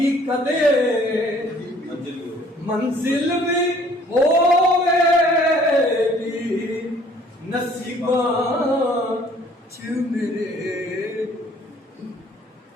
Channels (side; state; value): both; normal; correlation 0.57